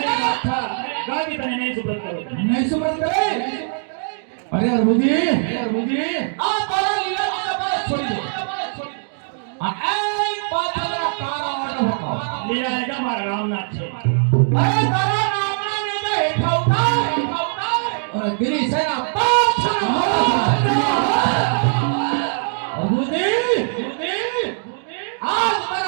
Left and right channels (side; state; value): left; silent; digital silence